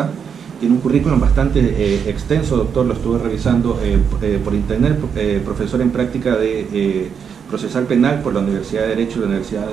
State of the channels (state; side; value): quieter; left; 7.0 dB